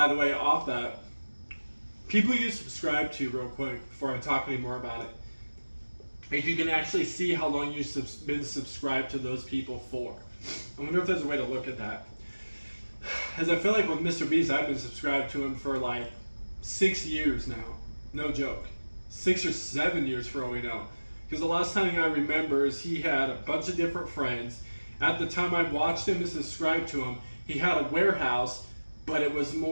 the way, off that. People you subscribe to, real quick, before I talk any more about it. If you can actually see how long you've been subscribed to those people for. I wonder if there's a way to look at that. As I feel like with Mr. Beast, I've been subscribed to him for 6 years now. No joke. 6 or 7 years for all we know. Because the last time I remember is he had a bunch of different friends. At the time I watched him and subscribed to him, he had a warehouse, but it was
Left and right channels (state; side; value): inverted; both; correlation -1.00